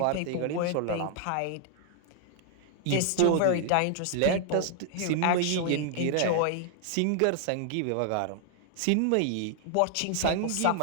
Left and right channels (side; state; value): both; different; correlation 0.00